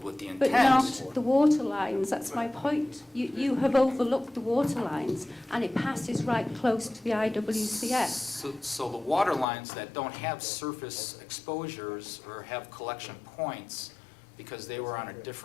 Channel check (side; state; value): right; drops out; at 9.5 s